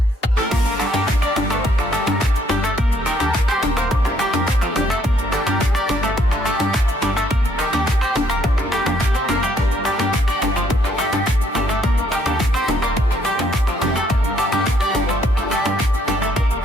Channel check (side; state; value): both; normal; correlation 0.67